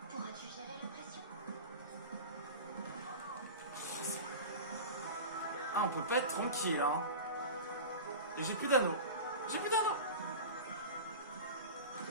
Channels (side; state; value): both; inverted; correlation -0.31